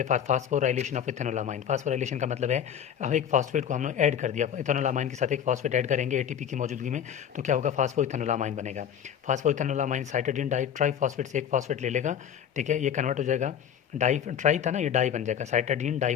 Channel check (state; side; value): quieter; right; 9.0 dB